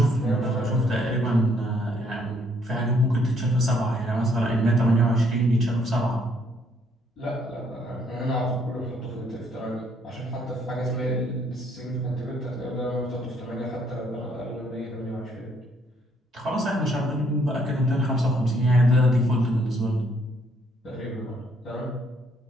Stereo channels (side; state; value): both; normal; correlation 0.68